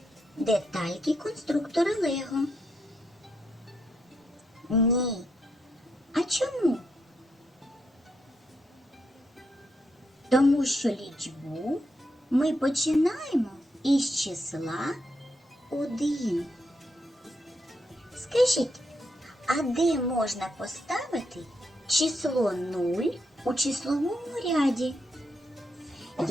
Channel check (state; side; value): normal; both; correlation 0.80